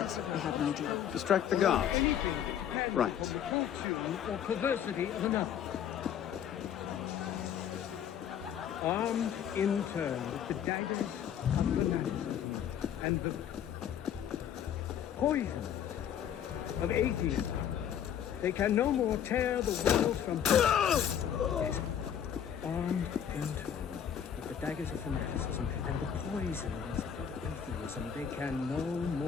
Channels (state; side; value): quieter; right; 9.1 dB